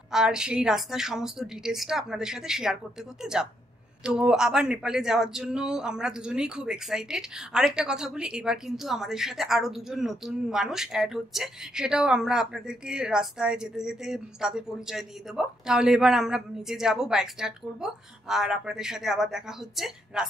আর সেই রাস্তার সমস্ত ডিটেলসটা আপনাদের সাথে শেয়ার করতে করতে যাব। তো আবার নেপালে যাওয়ার জন্য আমরা দুজনেই খুব এক্সাইটেড। আরেকটা কথা বলি, এবার কিন্তু আমাদের সাথে আরো দুজন নতুন মানুষ অ্যাড হচ্ছে, সেটাও আমরা আপনাদেরকে রাস্তায় যেতে যেতে তাদের পরিচয় দিয়ে দেবো। তাহলে এবার আমরা নিচে যাব, বাইক স্টার্ট করব, আর আপনাদের সাথে আবার দেখা হচ্ছে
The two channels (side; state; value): both; normal; correlation 0.76